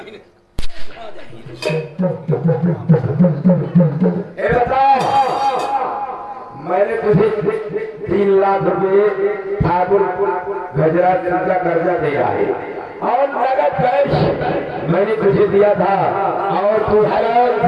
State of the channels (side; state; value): both; identical; correlation 1.00